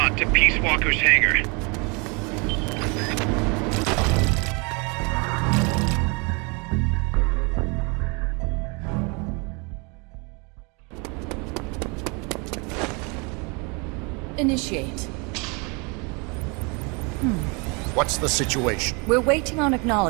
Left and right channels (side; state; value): left; quieter; 31.0 dB